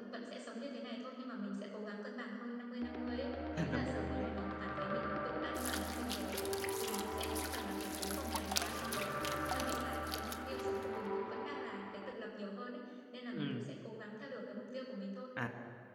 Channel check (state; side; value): identical; both; correlation 1.00